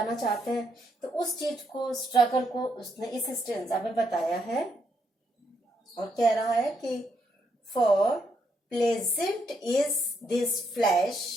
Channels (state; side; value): normal; both; correlation 0.76